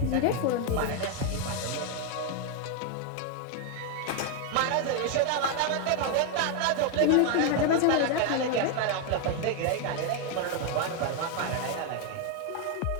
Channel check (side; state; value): both; different; correlation 0.01